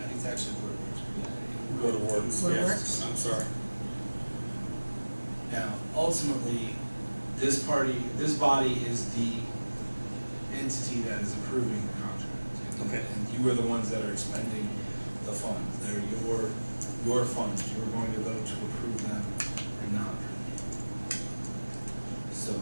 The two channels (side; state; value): both; inverted; correlation -1.00